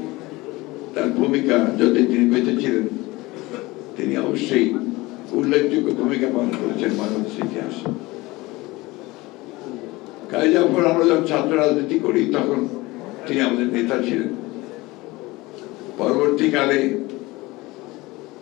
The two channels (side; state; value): right; quieter; 21.1 dB